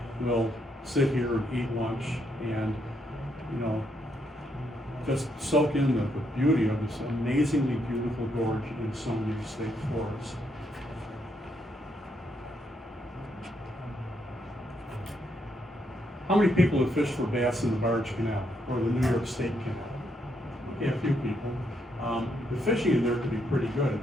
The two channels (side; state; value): both; normal; correlation 0.76